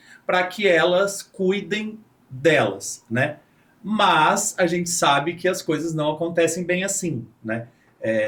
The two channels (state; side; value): identical; both; correlation 1.00